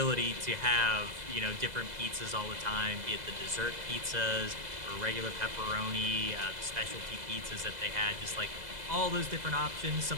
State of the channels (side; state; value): left; late; 2.0 ms